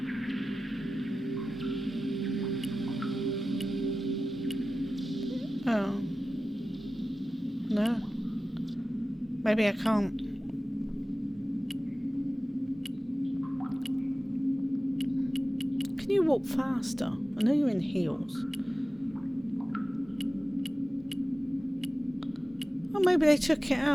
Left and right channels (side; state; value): both; normal; correlation 0.95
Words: Oh. No. Maybe I can't. Can you walk faster? I know you're in heels. Oh, maybe they took it